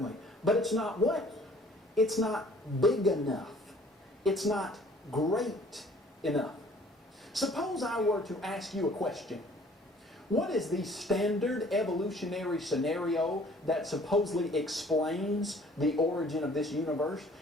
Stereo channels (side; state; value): both; normal; correlation 0.55